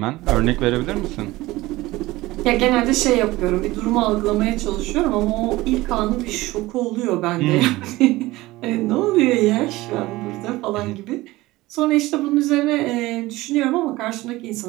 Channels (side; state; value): left; quieter; 19.0 dB